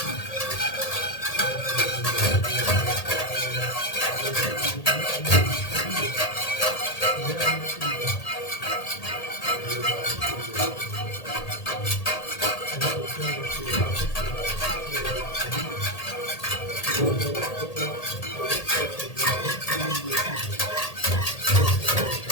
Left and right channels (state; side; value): late; right; 1.8 ms